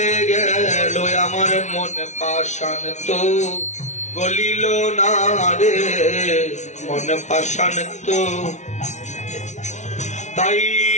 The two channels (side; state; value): right; late; 0.34 ms